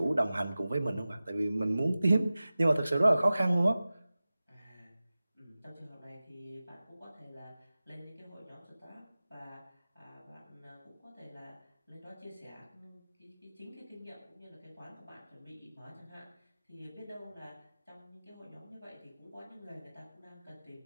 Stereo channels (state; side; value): inverted; both; correlation -0.96